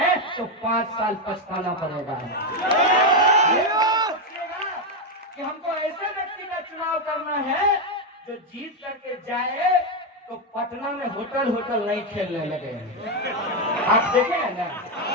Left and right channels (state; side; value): normal; both; correlation 0.05